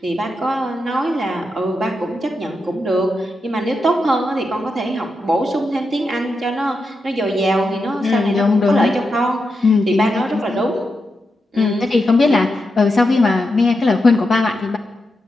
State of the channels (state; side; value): normal; both; correlation 0.87